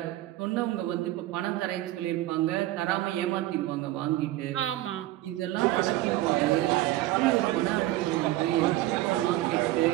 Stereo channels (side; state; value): left; quieter; 16.0 dB